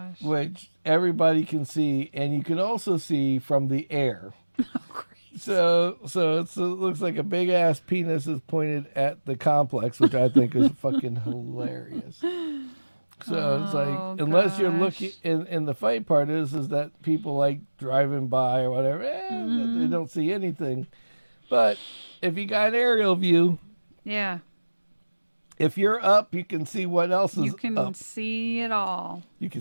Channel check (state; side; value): inverted; both; correlation -1.00